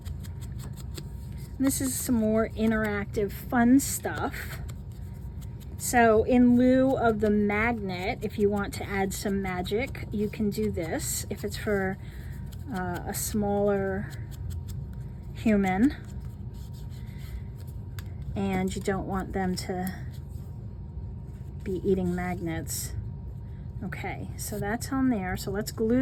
This is some more interactive fun stuff. So in lieu of the magnet, if you want to add some magic, you can do this. If it's for a smaller human and you don't want them to be eating magnets. Okay, so that's on there. So let's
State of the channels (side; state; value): both; identical; correlation 1.00